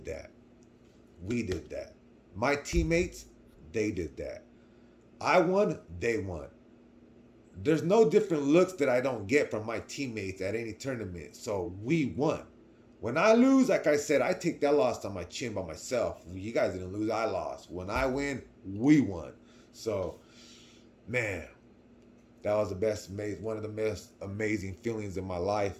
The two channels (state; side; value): identical; both; correlation 1.00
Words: that. We did that. My teammates, they did that. I won. They won. There's no different looks that I don't get from my teammates at any tournament. So we won. When I lose, like I said, I take that loss on my chin by myself. You guys didn't lose, I lost. When I win, we won. So, man, that was one of the most amazing feelings in my life.